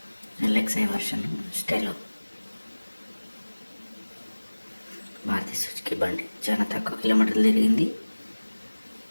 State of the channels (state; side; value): inverted; both; correlation -1.00